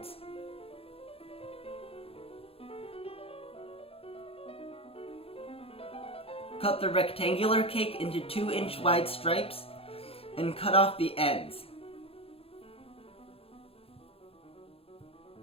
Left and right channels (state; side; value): late; right; 0.28 ms